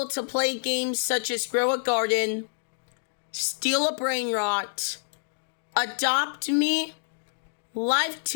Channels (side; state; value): right; silent; 60 dB below the other